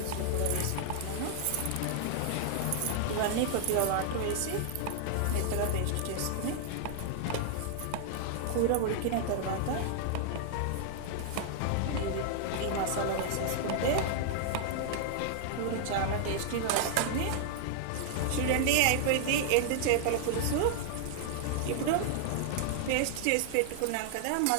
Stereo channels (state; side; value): different; both; correlation -0.01